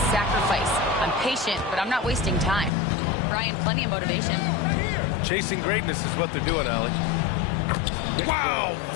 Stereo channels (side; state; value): right; drops out; at 2.7 s